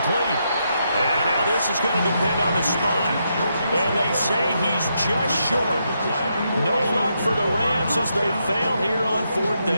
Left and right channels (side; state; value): both; inverted; correlation -0.81